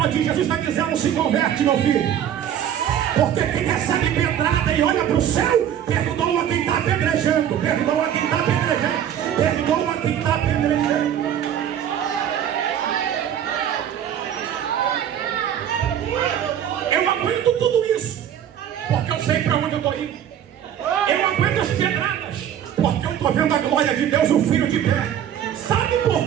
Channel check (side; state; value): left; quieter; 9.9 dB